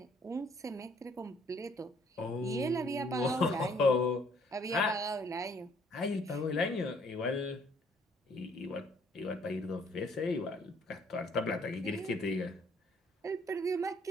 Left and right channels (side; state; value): both; normal; correlation 0.63